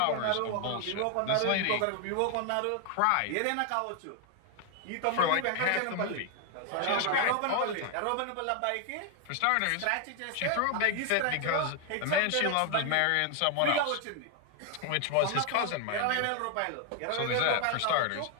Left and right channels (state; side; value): different; both; correlation 0.00